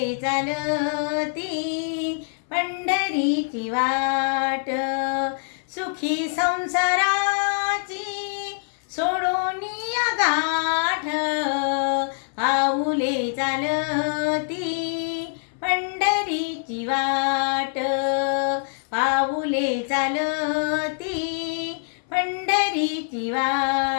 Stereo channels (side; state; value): right; silent; 62 dB below the other